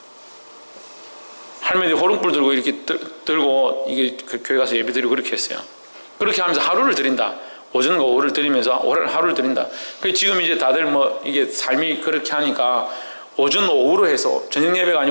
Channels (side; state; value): both; inverted; correlation -1.00